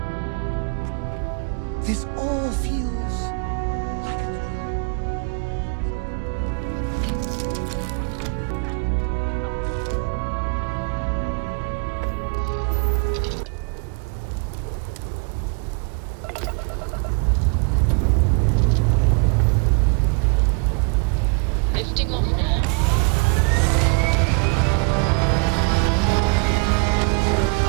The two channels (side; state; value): left; quieter; 35.1 dB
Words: This all feels like a Lifting off now.